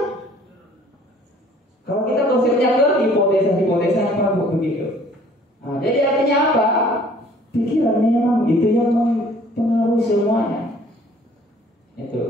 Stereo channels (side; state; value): both; normal; correlation 0.55